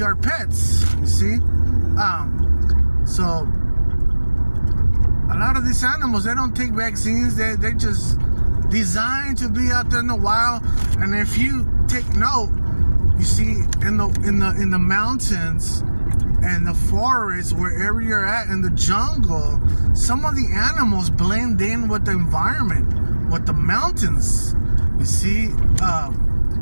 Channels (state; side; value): inverted; both; correlation -1.00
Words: our pets, you see. So a lot of these animals, they don't take vaccines. They're just designed to be out there in the wild. And if you take note, you see in the mountains and the forest, wherever you're at, in the jungle, some of the animals blend in with the environment, with the mountains. You see,